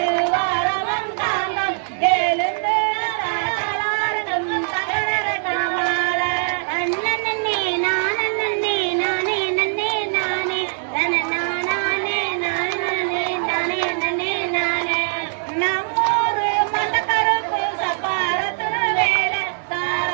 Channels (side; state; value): left; silent; digital silence